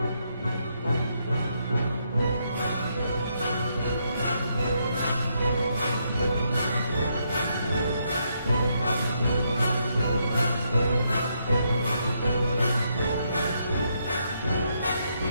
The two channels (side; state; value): both; inverted; correlation -0.77